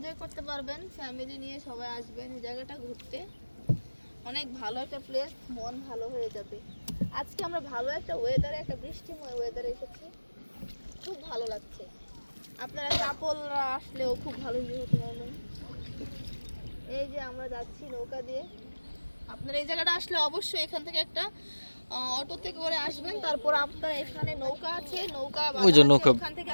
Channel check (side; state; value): both; inverted; correlation -1.00